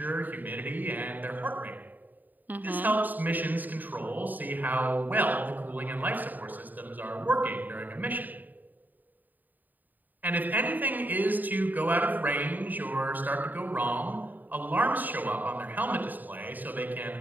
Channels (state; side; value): late; left; 0.087 ms